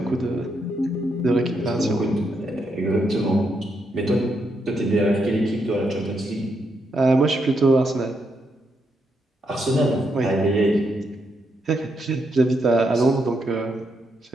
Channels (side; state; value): both; normal; correlation 0.80